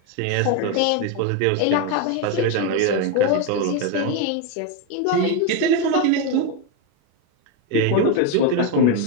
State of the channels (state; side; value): different; both; correlation 0.02